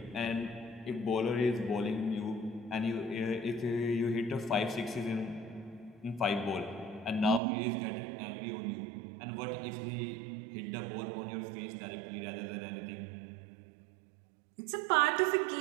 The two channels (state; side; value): drops out; left; at 7.4 s